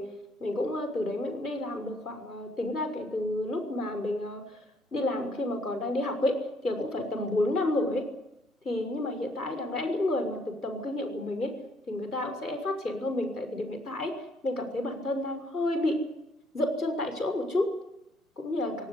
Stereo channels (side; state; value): both; normal; correlation 0.67